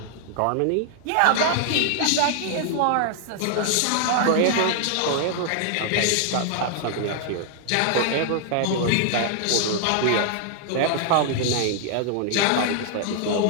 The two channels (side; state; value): both; different; correlation 0.00